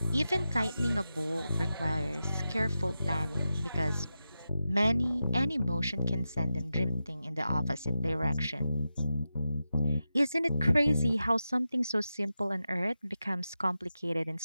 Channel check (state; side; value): inverted; both; correlation -0.90